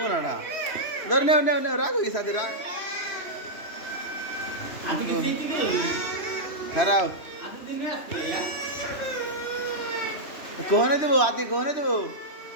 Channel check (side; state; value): right; late; 3.0 ms